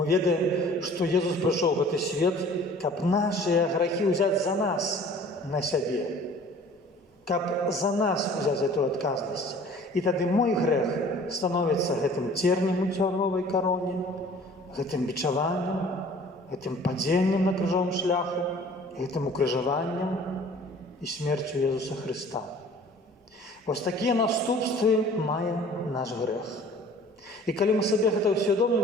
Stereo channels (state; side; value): normal; both; correlation 0.49